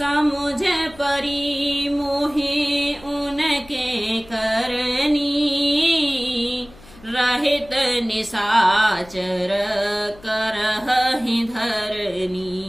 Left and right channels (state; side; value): noise; left; hum, 22 dB below the sound